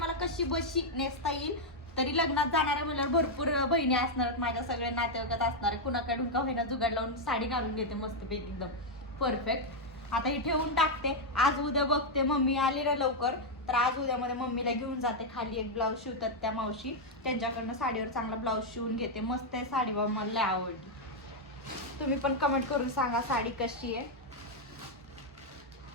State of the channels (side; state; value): both; normal; correlation -0.01